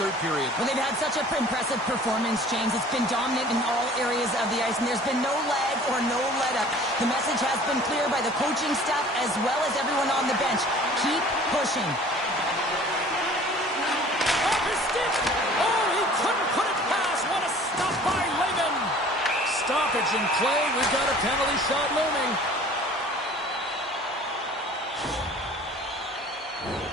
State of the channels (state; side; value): normal; both; correlation 0.48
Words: period. Well, they've had such an impressive performance, James. It's been dominant in all areas of the ice, and there's been no lag or no let-up. The message has been clear by the coaching staff as well as everyone on the bench. Keep pushing. Off his stick! Oh, he couldn't put it past. What a stop by Lehman. Stoppage in play. We've got a penalty shot looming.